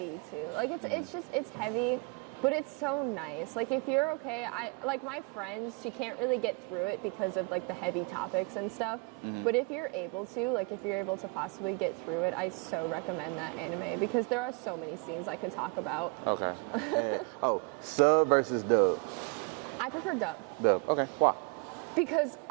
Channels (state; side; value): quieter; left; 31.5 dB